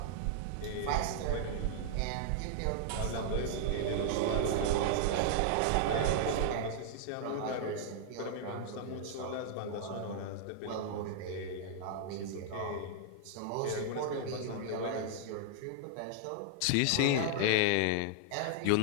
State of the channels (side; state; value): both; different; correlation -0.01